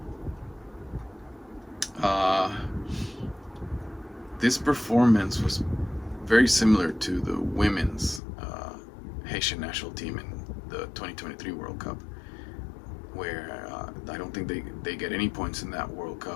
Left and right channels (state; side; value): drops out; right; at 8.2 s